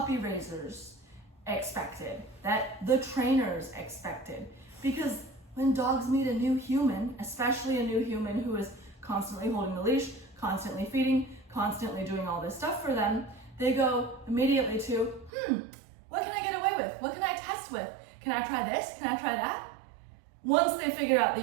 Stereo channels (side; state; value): left; drops out; at 15.3 s